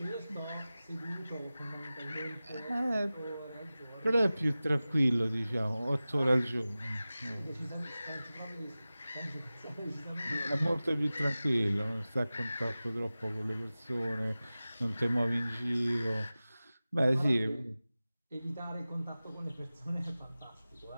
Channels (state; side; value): inverted; both; correlation -0.96